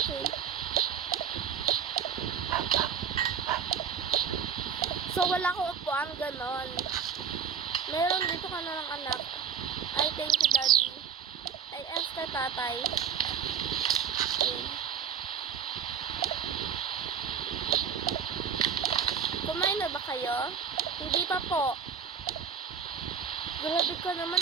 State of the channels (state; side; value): quieter; left; 7.3 dB